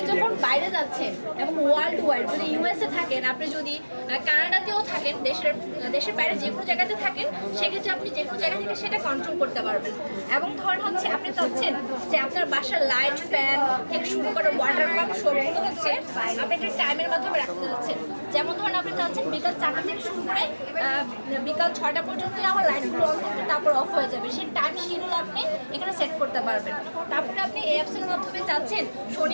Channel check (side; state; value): both; inverted; correlation -1.00